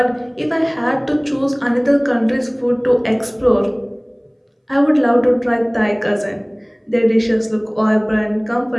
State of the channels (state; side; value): identical; both; correlation 1.00